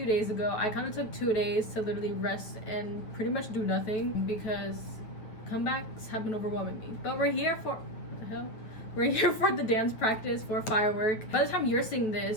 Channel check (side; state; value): right; late; 9.2 ms